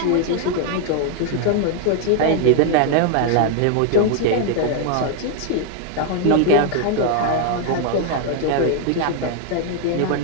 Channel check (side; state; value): both; different; correlation 0.00